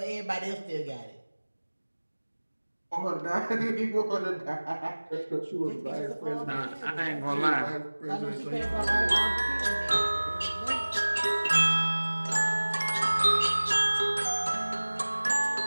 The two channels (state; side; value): inverted; both; correlation -1.00